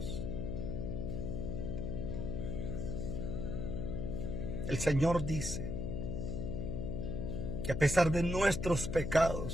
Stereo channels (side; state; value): left; noise; hum, 2 dB below the sound